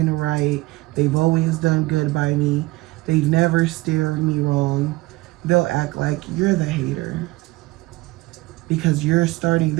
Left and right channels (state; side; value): quieter; left; 20.6 dB